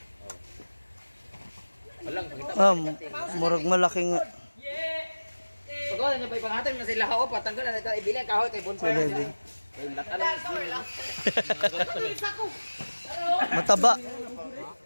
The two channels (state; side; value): inverted; both; correlation -1.00